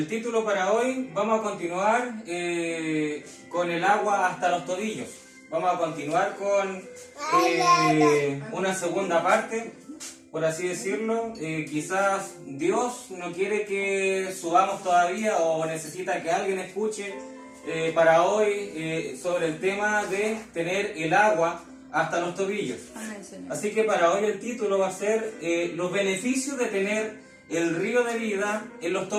título para hoy, vamos a continuar con el agua hasta los tobillos. Vamos a continuar con una segunda parte, por así decirlo. Quizás Dios no quiere que subamos todavía o necesita que alguien escuche para hoy sobre el tema de tener el agua hasta los tobillos. Así que para hoy el título va a ser los beneficios de tener el río de vida en los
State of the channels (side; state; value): both; identical; correlation 1.00